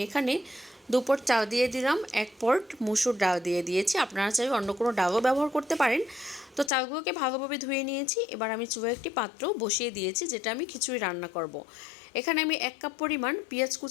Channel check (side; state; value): right; drops out; at 6.7 s